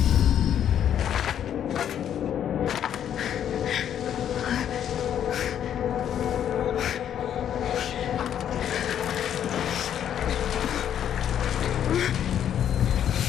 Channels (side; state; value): right; quieter; 9.7 dB